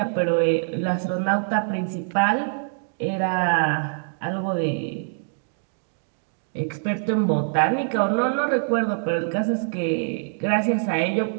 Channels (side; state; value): left; silent; digital silence